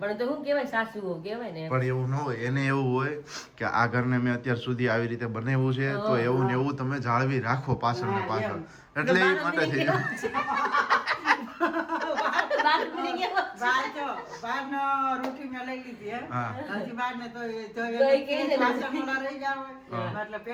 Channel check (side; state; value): both; identical; correlation 1.00